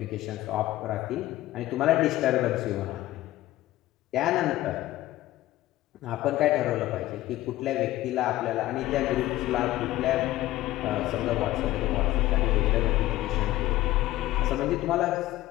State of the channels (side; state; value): right; quieter; 16.0 dB